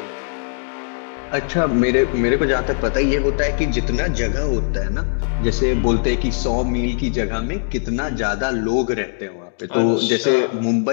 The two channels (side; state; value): right; silent; digital silence